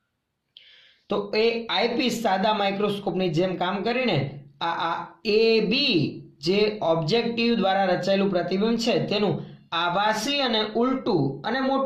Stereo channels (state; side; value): identical; both; correlation 1.00